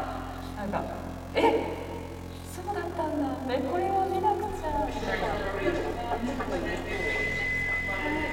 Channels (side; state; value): both; identical; correlation 1.00